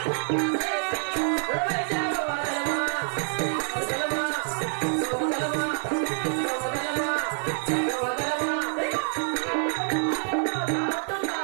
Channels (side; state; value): left; silent; 56 dB below the other